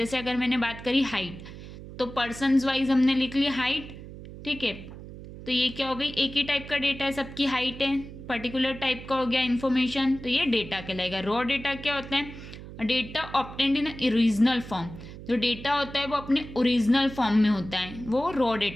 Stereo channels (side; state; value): right; noise; hum, 14 dB below the sound